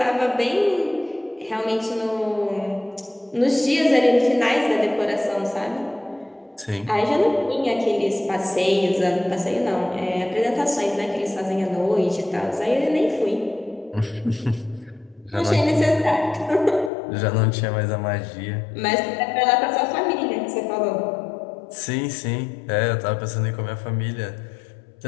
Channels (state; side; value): drops out; right; at 16.9 s